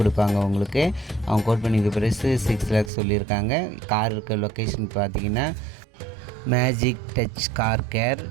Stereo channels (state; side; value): drops out; left; at 2.9 s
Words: உங்களுக்கு அவங்க கோட் பண்ணியிருக்க ப்ரைஸ் 6 லேக்ஸ் சொல்லியிருக்காங்க. கார் இருக்க லொக்கேஷன் பார்த்திங்கன்னா magic touch car care,